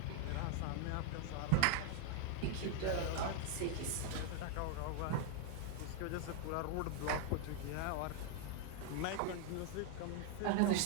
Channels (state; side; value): different; both; correlation 0.00